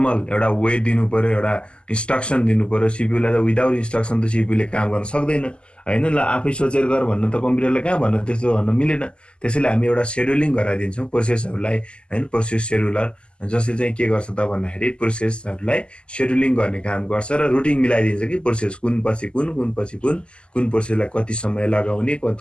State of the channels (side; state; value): right; late; 0.051 ms